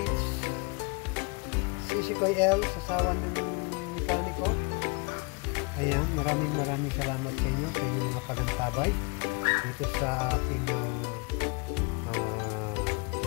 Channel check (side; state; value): right; quieter; 30.1 dB